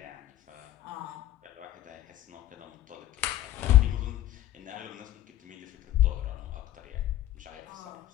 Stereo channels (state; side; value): quieter; right; 13.9 dB